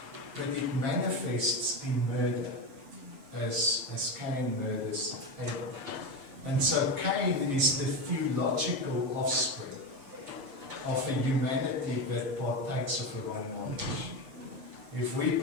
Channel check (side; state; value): left; late; 7.4 ms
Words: but it manifests in murder, as Cain murders Abel. And so Cain is the theological offspring of a humanity that partakes of a wrong knowledge. If we